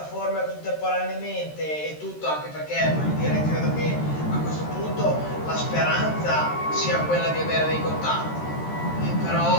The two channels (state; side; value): late; right; 13 ms